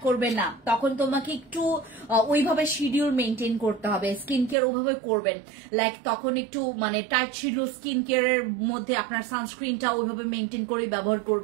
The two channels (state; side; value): drops out; left; at 4.5 s